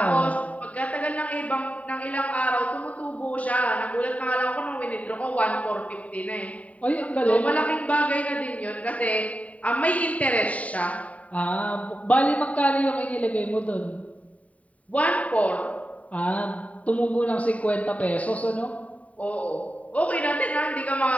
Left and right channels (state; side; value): late; right; 0.068 ms